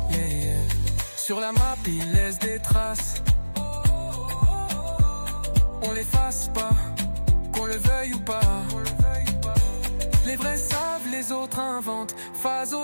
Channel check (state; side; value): inverted; both; correlation -1.00